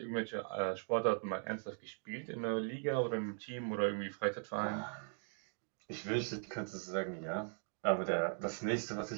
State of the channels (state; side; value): silent; left; 51 dB below the other